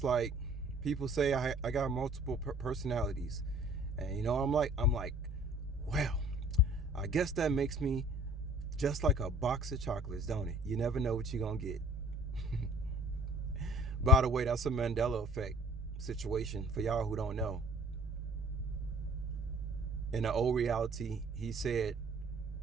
like people say I got multiple personalities, and I'm like, well, I guess that makes me just like a box of chocolates, don't it? You never know what you're gonna get. By the way, that's a Mandela effect situation for y'all who don't know. In the old reality, he said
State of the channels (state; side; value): normal; both; correlation 0.51